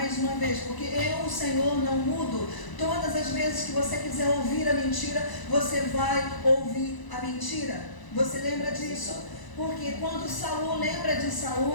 uma vez, porque eu, o Senhor, não mudo. Todas as vezes que você quiser ouvir a mentira, você vai ouvir a mentira. Você lembra disso? Porque quando Saul, lembra de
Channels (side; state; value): right; late; 1.0 ms